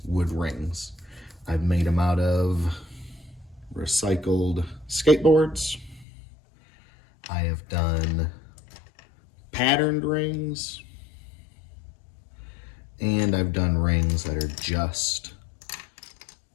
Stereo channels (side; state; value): right; drops out; at 6.1 s